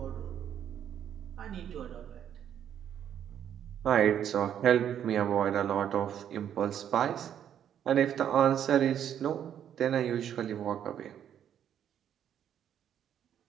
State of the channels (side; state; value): left; quieter; 9.6 dB